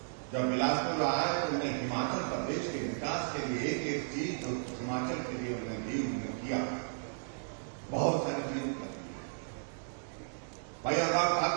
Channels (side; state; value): left; silent; digital silence